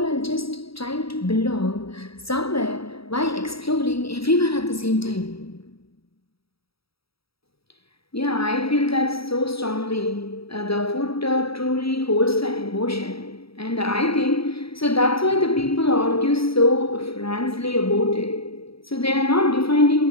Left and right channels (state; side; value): late; right; 0.76 ms